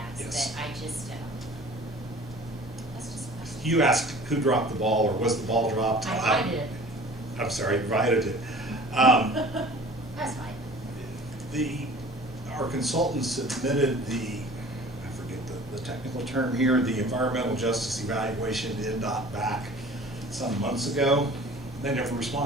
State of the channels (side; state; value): both; normal; correlation 0.45